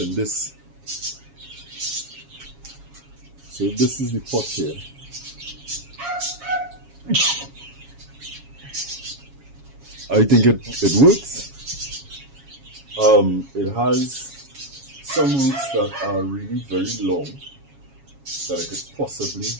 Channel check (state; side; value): late; left; 7.2 ms